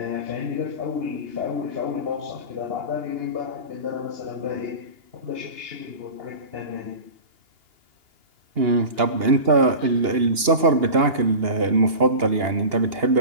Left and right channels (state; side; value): late; left; 2.8 ms